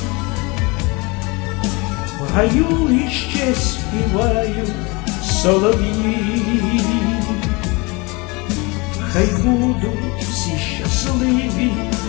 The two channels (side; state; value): right; quieter; 26.8 dB